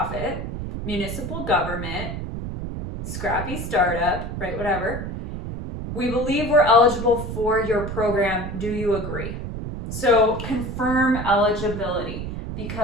municipal government, scrappy startup, right, whatever. We believe we're eligible for your program. Do you agree? So confirm eligibility,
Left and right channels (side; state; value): right; noise; rumble, 6 dB below the sound